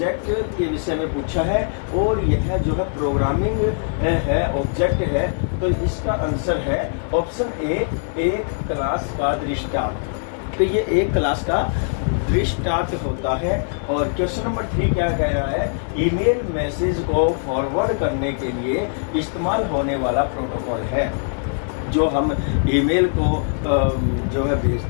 के विषय में पूछा है और यह जो है प्रोग्रामिंग है, ऑब्जेक्ट है। तो इसका आंसर है ऑप्शन ए, एक क्लास का दृष्टांत। तो ये एक क्लास का दृष्टांत होता है। और क्वेश्चन नंबर 3 क्या कह रहा है? ईमेल मैसेज को फॉरवर्ड करने के लिए इस्तेमाल होने वाला प्रोटोकॉल है। जो हम ईमेल को जो है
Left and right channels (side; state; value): right; silent; digital silence